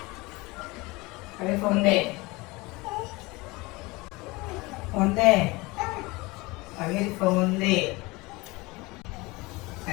अरे फोन दे. फोन दे. अरे फोन दे.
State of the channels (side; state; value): right; quieter; 23.4 dB